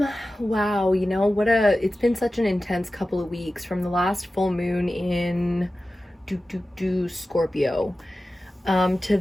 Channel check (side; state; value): both; normal; correlation 0.95